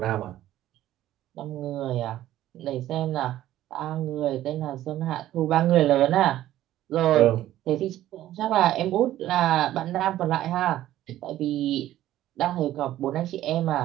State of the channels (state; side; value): quieter; left; 13.6 dB